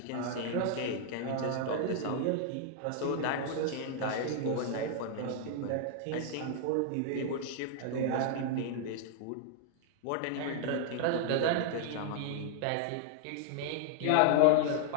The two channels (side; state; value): both; different; correlation 0.00